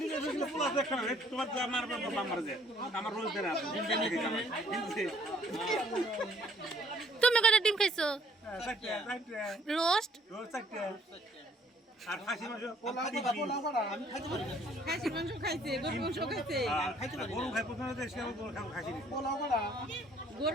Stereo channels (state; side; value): normal; both; correlation 0.61